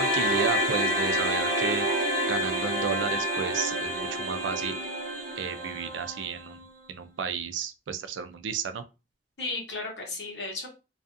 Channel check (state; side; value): normal; both; correlation 0.03